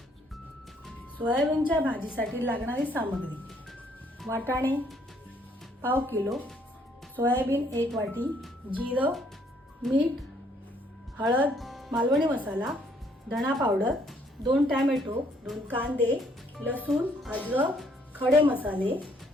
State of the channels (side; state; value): both; normal; correlation 0.66